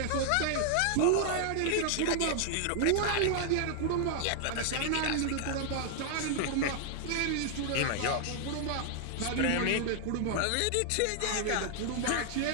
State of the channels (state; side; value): different; both; correlation 0.00